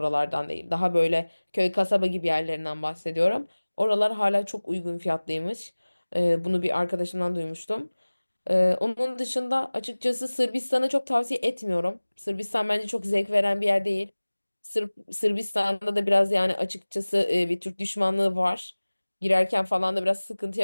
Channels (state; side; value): inverted; both; correlation -1.00